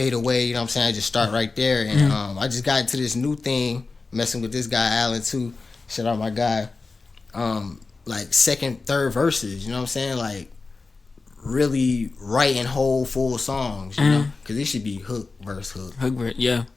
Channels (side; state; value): right; quieter; 4.0 dB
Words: away. You know what I'm saying? I just start right there, and I just got into this new thing, messing with this guy Allen too. Shout out my guy. Like second, third verses. You know what I'm saying? Like really writing whole full songs. You know, because it should be hook verse hook.